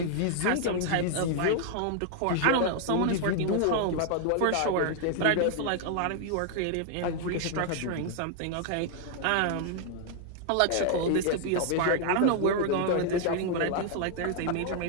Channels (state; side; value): different; both; correlation 0.00